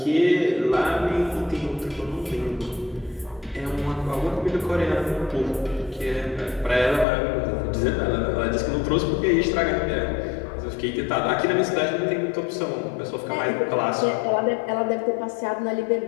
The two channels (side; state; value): right; drops out; at 7.1 s